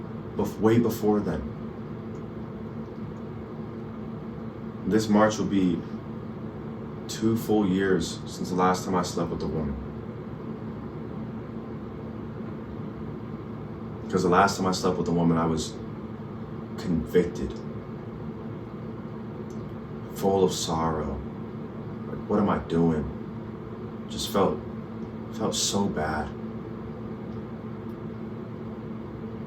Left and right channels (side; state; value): both; identical; correlation 1.00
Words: way before then. This March will be 2 full years since the last time I slept with a woman. Because the last time I slept with a woman, I was convicted, full of sorrow. Like, what am I doing? Just felt so bad.